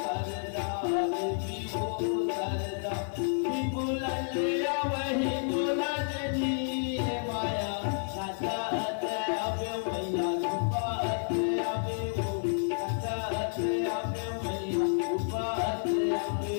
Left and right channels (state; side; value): silent; right; 57 dB below the other